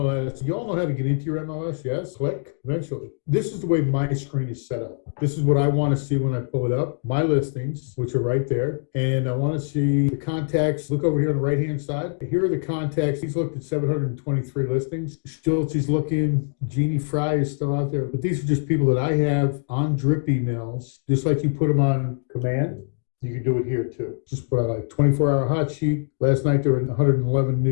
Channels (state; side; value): silent; right; digital silence